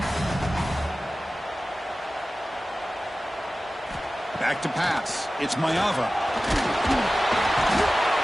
Back to pass. It's Ncaa.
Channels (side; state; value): both; normal; correlation 0.96